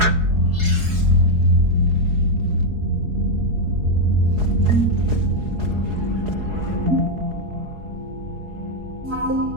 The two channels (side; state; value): left; late; 4.7 ms